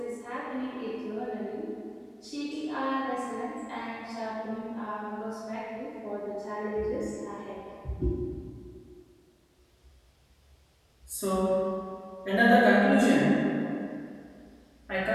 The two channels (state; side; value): identical; both; correlation 1.00